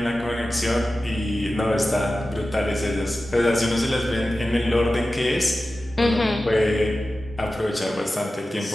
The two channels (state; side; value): normal; both; correlation 0.94